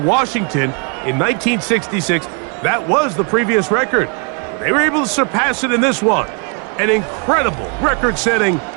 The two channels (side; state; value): left; quieter; 36.6 dB